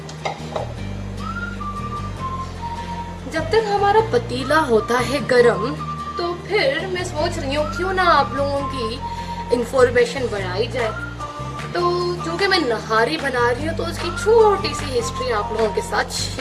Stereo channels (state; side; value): identical; both; correlation 1.00